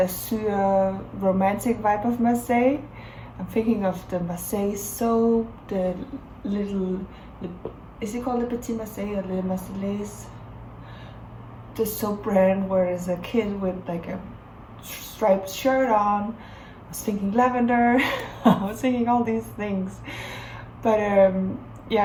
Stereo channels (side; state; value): both; identical; correlation 1.00